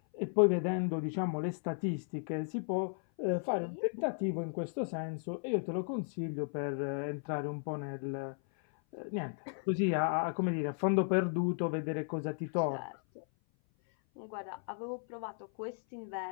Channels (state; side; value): silent; right; 54 dB below the other